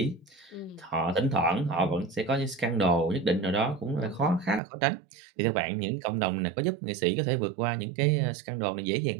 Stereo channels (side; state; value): left; drops out; at 4.6 s